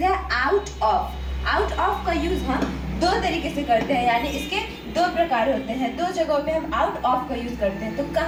है आउट ऑफ. आउट ऑफ का यूज हम दो तरीके से करते हैं, यानी इसके दो प्रकार होते हैं. दो जगहों पे हम आउट ऑफ का यूज करते हैं. तो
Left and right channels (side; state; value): both; identical; correlation 1.00